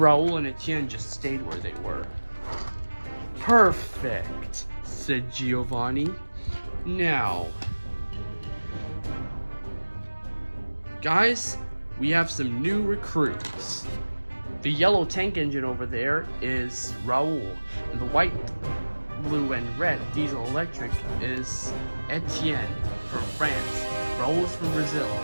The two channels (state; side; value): inverted; both; correlation -1.00